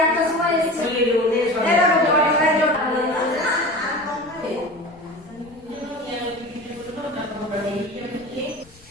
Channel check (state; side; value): noise; left; rumble, 26 dB below the sound